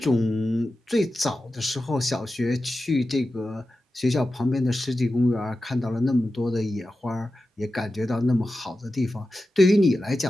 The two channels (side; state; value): both; normal; correlation 0.93